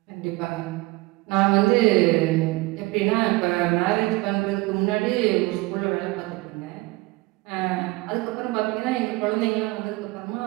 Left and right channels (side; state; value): left; quieter; 22.1 dB